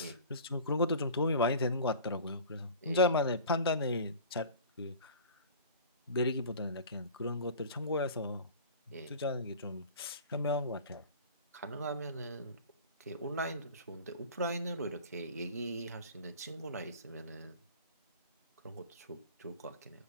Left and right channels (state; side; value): inverted; both; correlation -0.41